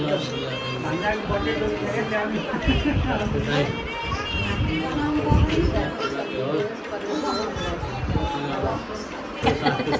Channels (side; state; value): both; identical; correlation 1.00